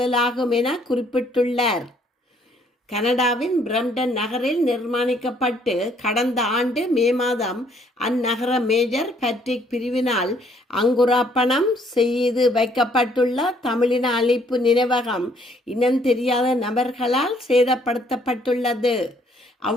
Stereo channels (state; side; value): normal; both; correlation 0.65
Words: என குறிப்பிட்டுள்ளார். கனடாவின் பிரம்டன் நகரில் நிர்மாணிக்கப்பட்டு கடந்த ஆண்டு மே மாதம் அந்நகர மேஜர் பேட்ரிக் பிரிவினால் அங்குரார்ப்பணம் செய்து வைக்கப்பட்டுள்ள தமிழின அழிப்பு நினைவகம் இனம் தெரியாத நபர்களால் சேதப்படுத்தப்பட்டுள்ளது.